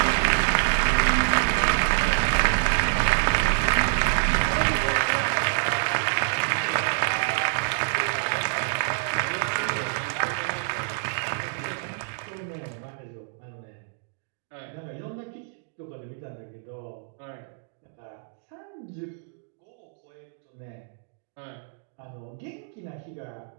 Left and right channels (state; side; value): silent; left; digital silence